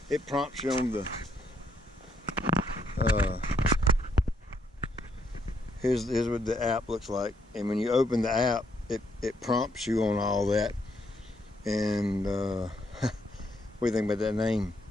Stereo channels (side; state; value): both; normal; correlation 0.74